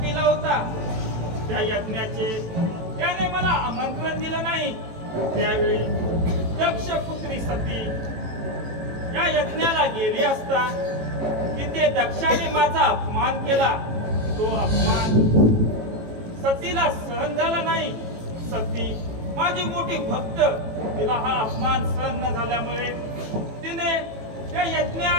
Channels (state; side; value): late; left; 18 ms